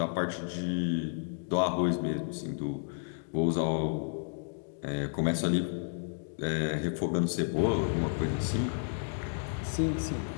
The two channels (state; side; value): silent; right; digital silence